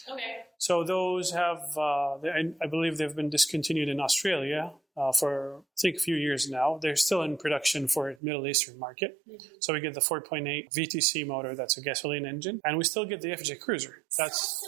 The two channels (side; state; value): left; drops out; at 8.2 s